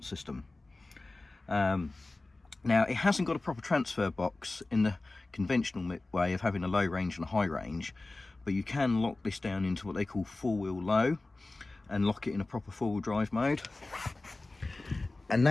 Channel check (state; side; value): quieter; right; 3.1 dB